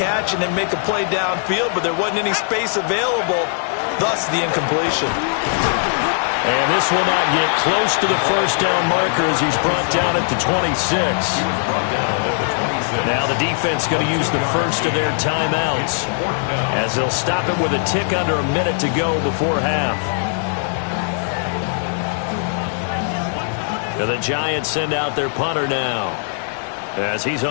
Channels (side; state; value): right; silent; digital silence